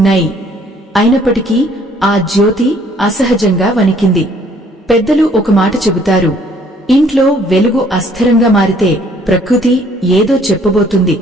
అయినప్పటికీ ఆ జ్యోతి అసహజంగా వణికింది. పెద్దలు ఒక మాట చెబుతారు, ఇంట్లో వెలుగు అస్థిరంగా మారితే ప్రకృతి ఏదో చెప్పబోతుంది.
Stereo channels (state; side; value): normal; both; correlation 0.61